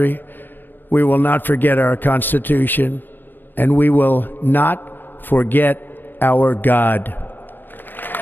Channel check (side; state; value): right; late; 0.093 ms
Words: we will not forget our Constitution, and we will not forget our God.